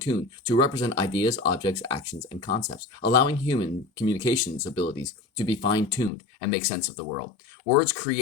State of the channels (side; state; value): right; drops out; at 6.1 s